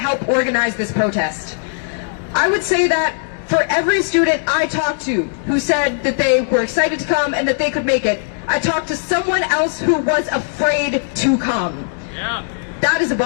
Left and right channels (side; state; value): right; silent; digital silence